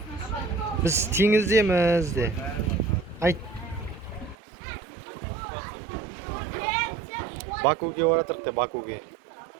Біз теңіздеміз де. Айт. Бакуге оратырық де, Бакуге.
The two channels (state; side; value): drops out; left; at 4.4 s